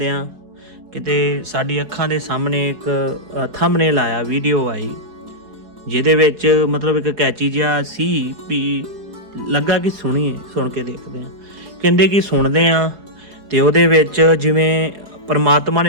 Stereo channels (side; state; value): left; late; 4.7 ms